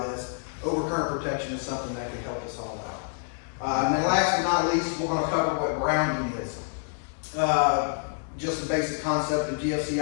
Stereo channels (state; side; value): silent; right; 60 dB below the other